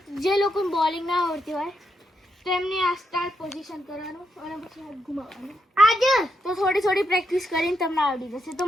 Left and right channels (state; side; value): normal; both; correlation 0.81